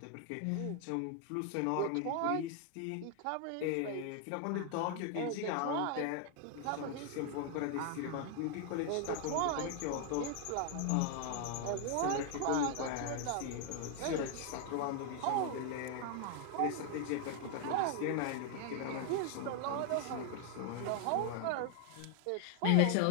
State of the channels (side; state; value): both; different; correlation 0.00